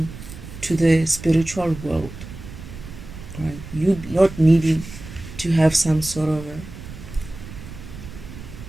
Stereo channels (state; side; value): noise; right; rumble, 13 dB below the sound